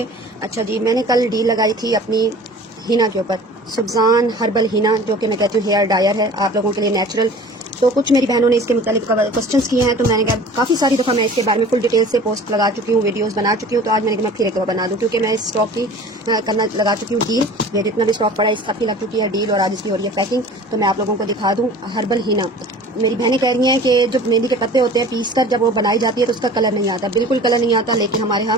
अच्छा जी, मैंने कल डील लगाई थी अपनी हिना के ऊपर, सुबजान हर्बल हिना, जो कि मैं कहती हूँ हेयर डायर है आप लोगों के लिए नेचुरल। तो कुछ मेरी बहनों ने इसके मुतालिक क्वेश्चंस किए हैं, तो मैंने कहा काफ़ी सारी दफ़ा मैं इसके बारे में फुल डिटेल से पोस्ट लगा चुकी हूँ, वीडियोस बना चुकी हूँ। तो आज मैंने कहा मैं फिर एक दफ़ा बना दूँ, क्योंकि मैं इस स्टॉक की करना लगा चुकी हूँ डील। ये जितना भी स्टॉक पड़ा है इस सब की लग चुकी है डील, और आज इसकी हो रही है पैकिंग। तो मैं आप लोगों को दिखा दूँ हर्बल हिना। मेरी बहनें कह रही हैं कि जो मेहंदी के पत्ते होते हैं पीस कर जब वो बनाई जाती है तो उसका कलर नहीं आता, बिल्कुल कलर नहीं आता। लेकिन हमारे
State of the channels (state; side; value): normal; both; correlation 0.43